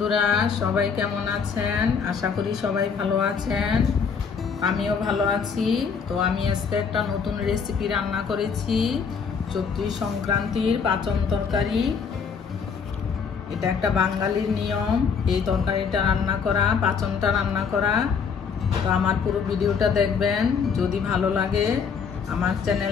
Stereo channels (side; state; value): right; quieter; 6.1 dB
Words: সবাই কেমন আছেন? আশা করি সবাই ভালো আছেন। আমিও ভালো আছি। তো আমি আজকে একটা নতুন রেসিপি রান্না করেছি, চৈত্র সংক্রান্তির পাচন তরকারি। এটা একটা বাঙালির নিয়ম, এই তরকারিটা রান্না করা, পাচনটা রান্না করা। তো আমার পুরো ভিডিওটা দেখবেন। যদি ভালো লাগে আমার